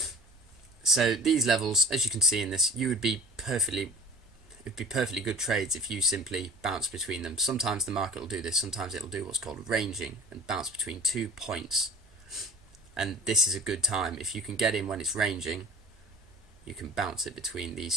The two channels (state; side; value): normal; both; correlation 0.40